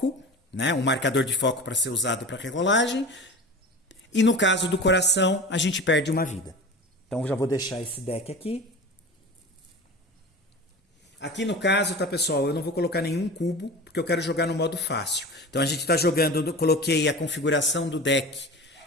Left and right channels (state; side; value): normal; both; correlation 0.34